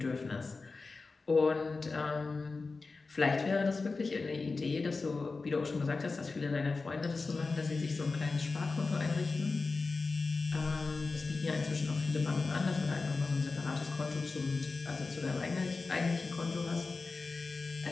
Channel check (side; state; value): right; quieter; 4.0 dB